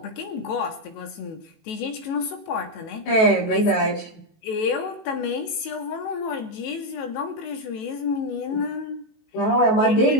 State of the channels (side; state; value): right; late; 18 ms